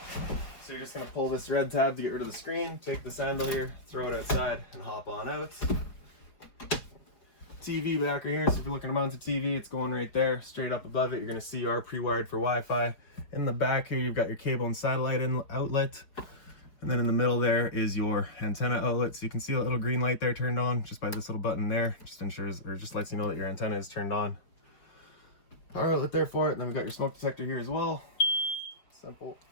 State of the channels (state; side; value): late; right; 5.1 ms